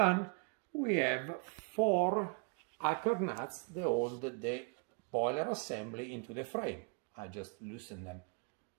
we have 4 anchor nuts that hold the boiler assembly into the frame. I just loosen them.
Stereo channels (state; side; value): quieter; left; 32.8 dB